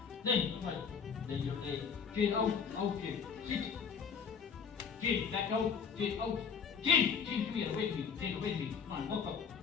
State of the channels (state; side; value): quieter; right; 6.5 dB